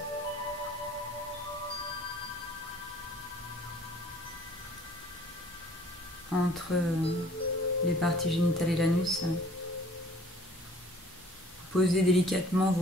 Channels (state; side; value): normal; both; correlation 0.54